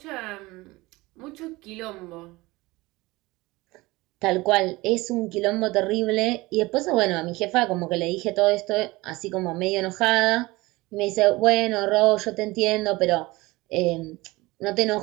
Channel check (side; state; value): left; quieter; 21.1 dB